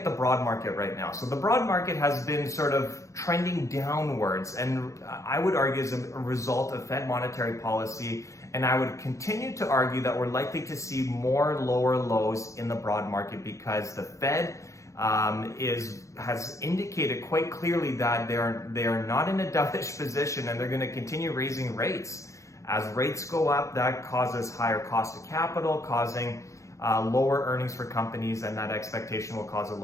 the broad market right now. So the broad market has been sort of trending downwards, and I would argue as a result of Fed monetary policy, and I would continue to argue that we're likely to see more lower lows in the broad market because the Fed has indicated quite clearly that they are not in a dovish position, and they're going to continue raising rates. As rates go up, that causes higher cost of capital, causing lower earnings for companies, and that expectation will cause a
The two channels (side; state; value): right; late; 0.15 ms